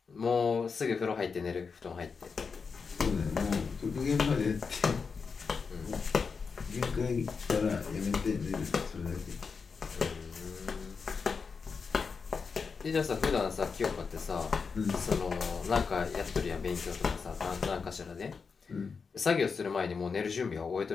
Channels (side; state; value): right; quieter; 5.3 dB